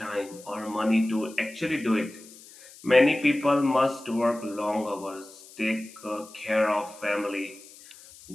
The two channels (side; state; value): left; noise; hiss, 20 dB below the sound